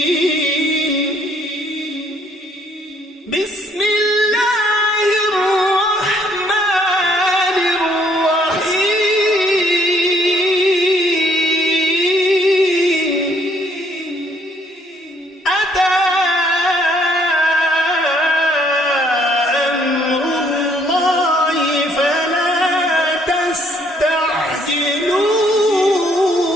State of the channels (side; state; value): both; normal; correlation 0.65